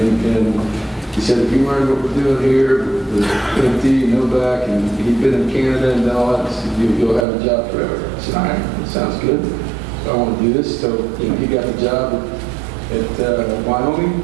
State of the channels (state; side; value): drops out; left; at 7.2 s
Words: he said, if you learn what we're doing here, with empty, no back, and he'd been in Canada and all that, so you'll have a job forever. I said, all right, that sounds good. So I want to do this. So he got the job at Wyoming